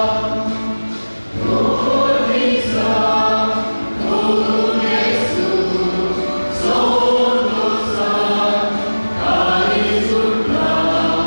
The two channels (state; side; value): inverted; both; correlation -1.00